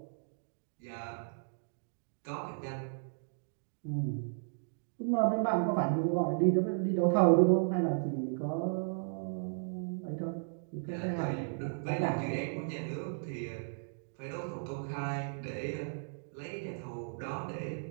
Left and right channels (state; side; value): silent; left; digital silence